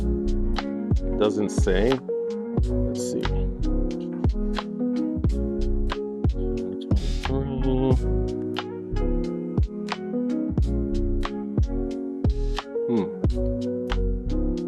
Doesn't say. Let's see.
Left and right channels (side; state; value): both; identical; correlation 1.00